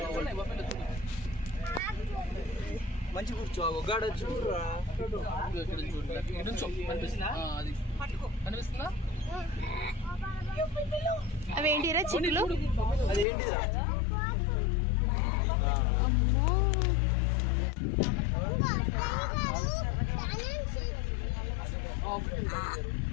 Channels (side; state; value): right; drops out; at 13.2 s